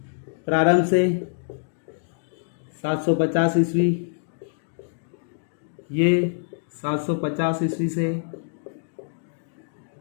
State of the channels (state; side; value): silent; right; digital silence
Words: प्रारंभ से 750 ईस्वी, ये 750 ईस्वी से